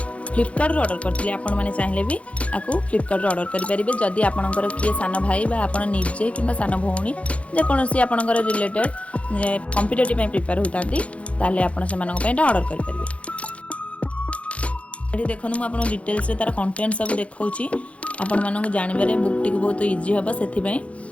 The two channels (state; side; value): late; right; 0.063 ms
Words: फ्लिपकार्ट ऑर्डर करते आपण मैंने चाहिए भी आपको फ्लिपकार्ट ऑर्डर करेंगे जदि आपणकर किए सान भाई आप निजे कि सान भौणी जेकोसी आपणकर रिलेटेड कॉम्पिटिटिव प्रिपेयर होता आप ऑर्डर करेंगे। देखो मुझे डिटेल्स तार कंटेंट सब देखा आपण मानक जानवर बुक टी बहुत इजी हम से